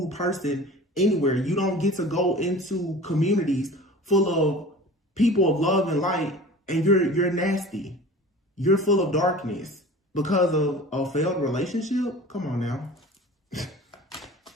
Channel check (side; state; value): both; normal; correlation 0.40